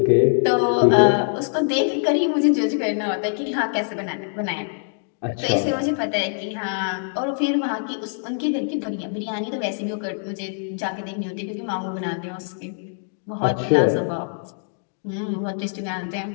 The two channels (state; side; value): silent; right; 58 dB below the other